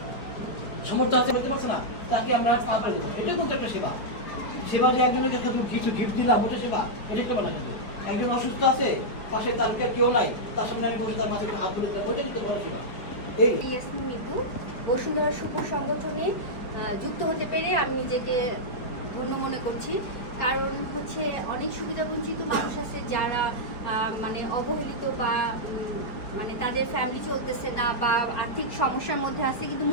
সমর্থ আছে, বলতে পারছে না, তাকে আমরা পাওয়া দেবো। এটা কিন্তু একটা সেবা। সেবা যে একজনকে কিছু গিফট দিলাম ওটা সেবা, এটা একটা না। কিন্তু একজন অসুস্থ আছে, পাশে তার কেউ নাই, তার সামনে আমি বসে তার মাথায় হাত তুলে দিলাম, ওটা কিন্তু বড় সেবা। এই ইয়াসমিন মিতু, বসুন্ধরা শুভ সংগঠনে যুক্ত হতে পেরে আমি নিজেকে ধন্য মনে করছি। কারণ হচ্ছে অনেক সুবিধাবঞ্চিত মানুষ আছে যারা মানে অবহেলিত বা মানে তাদের ফ্যামিলি চলতেছে না বা আর্থিক সমস্যার মধ্যে আছে কিন্তু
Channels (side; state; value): right; late; 4.9 ms